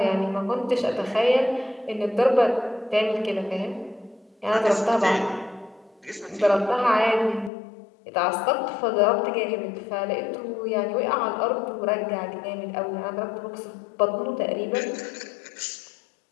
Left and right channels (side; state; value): right; drops out; at 7.5 s